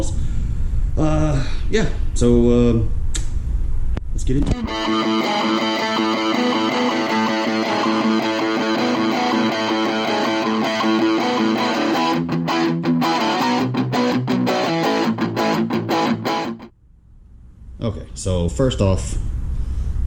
Yeah, so let's get into it. Okay, so first off,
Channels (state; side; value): identical; both; correlation 1.00